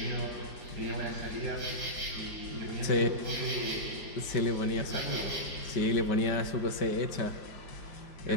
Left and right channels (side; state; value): right; late; 5.2 ms